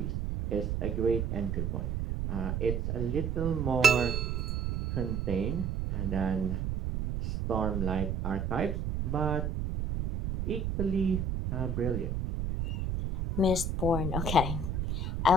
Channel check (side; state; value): right; noise; rumble, 1 dB below the sound